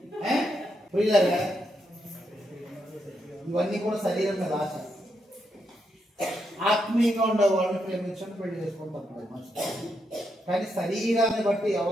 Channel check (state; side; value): normal; both; correlation 0.81